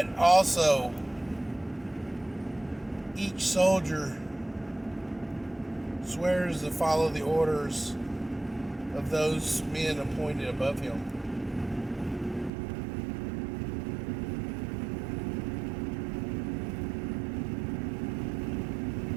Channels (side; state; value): left; drops out; at 12.5 s